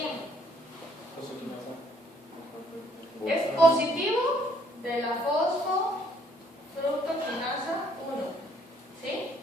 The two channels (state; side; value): normal; both; correlation 0.65